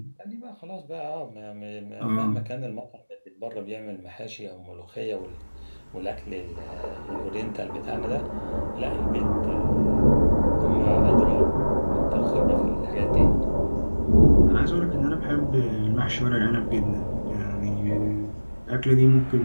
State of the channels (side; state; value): both; inverted; correlation -1.00